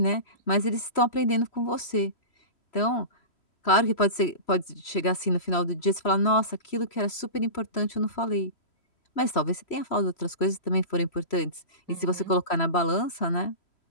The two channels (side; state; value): right; late; 3.0 ms